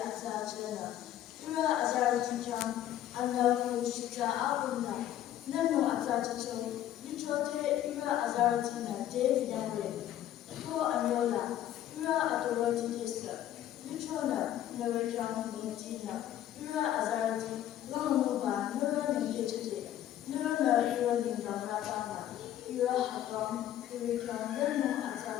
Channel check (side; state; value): right; quieter; 11.9 dB